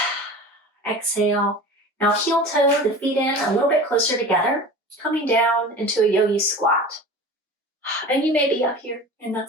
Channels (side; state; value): both; normal; correlation 0.36